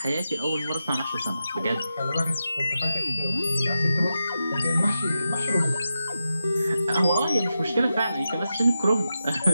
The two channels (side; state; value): both; inverted; correlation -0.90